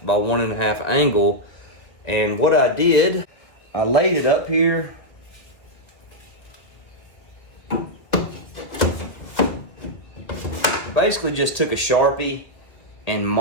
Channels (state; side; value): late; right; 1.8 ms